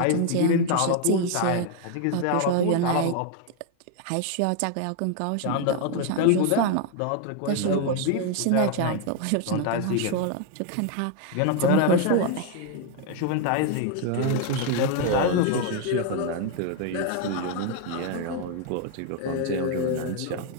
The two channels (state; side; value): different; both; correlation 0.01